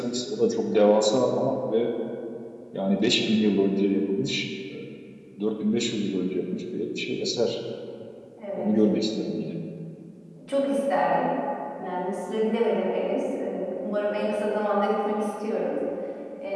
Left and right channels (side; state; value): both; identical; correlation 1.00